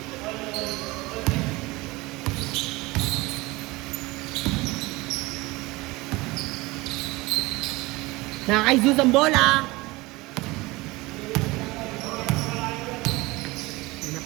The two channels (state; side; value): quieter; left; 21.9 dB